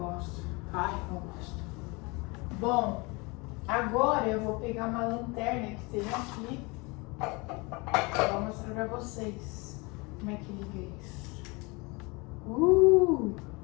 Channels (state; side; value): quieter; right; 27.2 dB